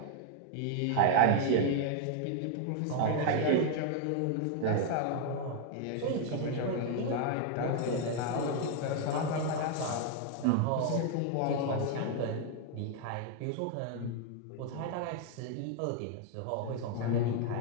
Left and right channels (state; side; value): different; both; correlation 0.00